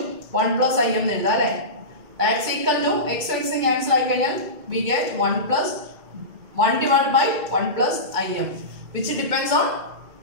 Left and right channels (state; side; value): late; left; 2.2 ms